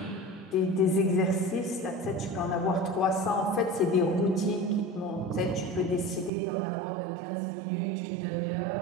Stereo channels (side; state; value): left; drops out; at 6.3 s